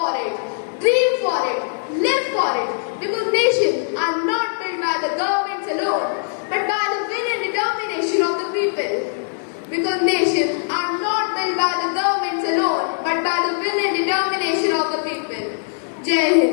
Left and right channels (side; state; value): right; silent; digital silence